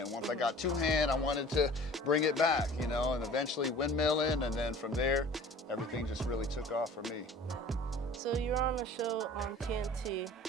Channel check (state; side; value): normal; both; correlation 0.45